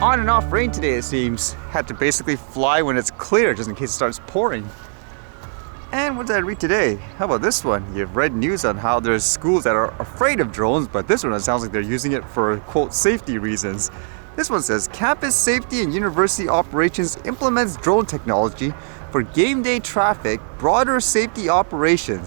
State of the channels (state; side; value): silent; left; 56 dB below the other